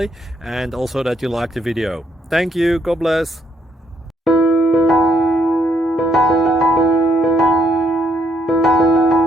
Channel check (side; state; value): both; normal; correlation 0.72